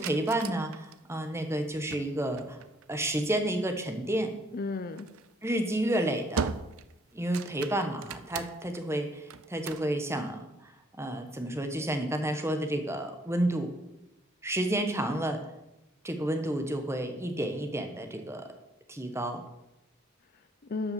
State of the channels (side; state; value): both; normal; correlation 0.66